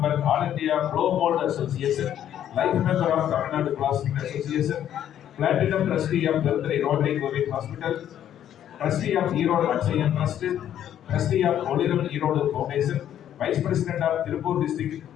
all India blow mould association, life member of Tamil Nadu plastic association, Platinum Trustee of Birthday Rotary Covid Hospital, Trustee of Erode Akshayan Trust, Trustee of Oliram Erode Foundation, Vice President of Tirupur District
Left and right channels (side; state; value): right; quieter; 10.6 dB